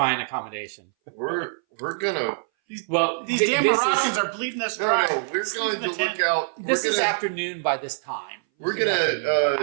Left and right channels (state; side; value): silent; left; 60 dB below the other